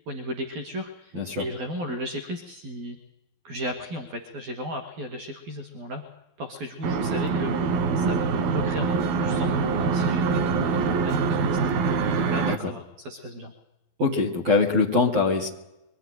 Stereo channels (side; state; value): left; late; 12 ms